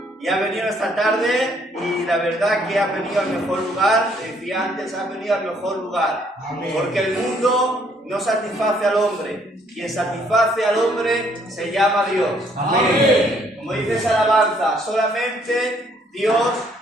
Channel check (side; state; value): both; normal; correlation 0.66